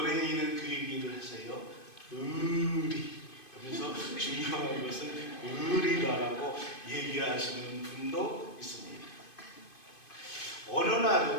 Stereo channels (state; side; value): late; right; 2.5 ms